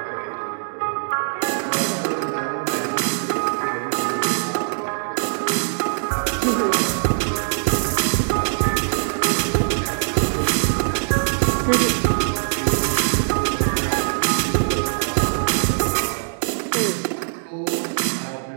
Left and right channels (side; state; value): left; silent; digital silence